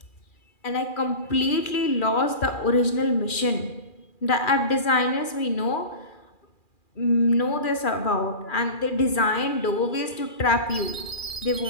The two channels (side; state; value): right; late; 2.4 ms